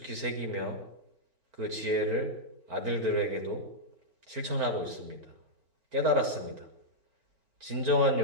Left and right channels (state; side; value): late; left; 4.4 ms